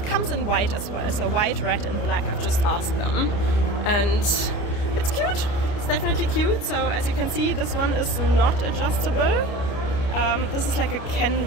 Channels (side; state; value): right; late; 29 ms